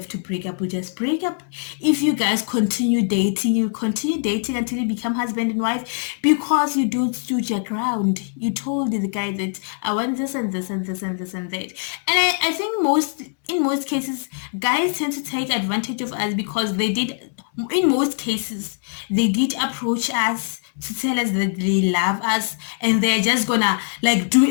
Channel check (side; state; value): right; silent; 56 dB below the other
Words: to break up, we just break up. If you guys continue dating, you continue dating until you become husband and wife, because you don't stood your ground. You told the guy that I want this and this and this and this and that. And I think in most cases, guys tend to take advantage of us, because in most cases, they did approach us to tell us that they love us, and they're just gonna like do